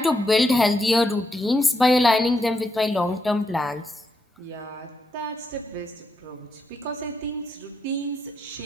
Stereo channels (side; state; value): both; normal; correlation 0.81